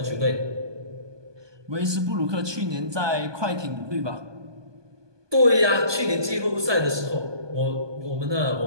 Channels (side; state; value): left; late; 1.2 ms